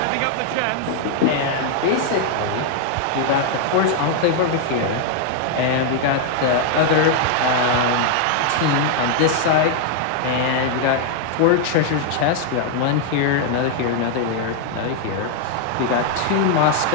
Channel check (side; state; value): both; different; correlation 0.00